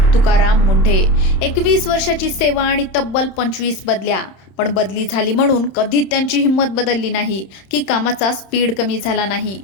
तुकाराम मुंढे. 21 वर्षाची सेवा आणि तब्बल 25 बदल्या. पण बदली झाली म्हणून कधीच त्यांची हिंमत बदलली नाही की कामाचा स्पीड कमी झाला नाही.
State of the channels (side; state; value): right; late; 31 ms